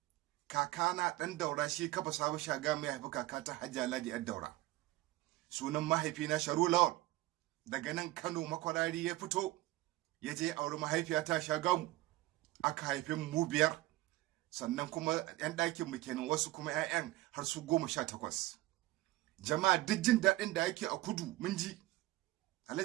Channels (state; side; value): quieter; left; 18.1 dB